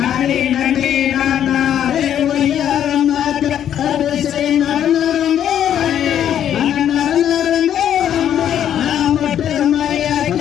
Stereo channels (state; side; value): quieter; right; 10.1 dB